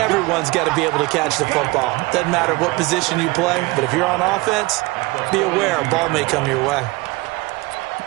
got to be able to catch the football. Doesn't matter what position you play, but if you're on offense, be aware a ball may come your way.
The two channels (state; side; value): quieter; left; 22.8 dB